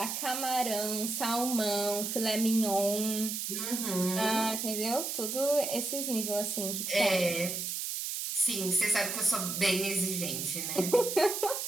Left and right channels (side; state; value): right; noise; hiss, 3 dB below the sound